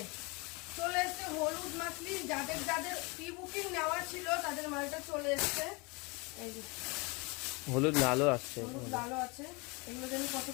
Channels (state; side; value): quieter; right; 28.3 dB